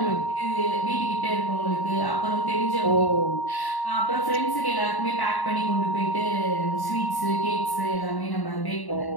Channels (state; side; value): late; right; 1.1 ms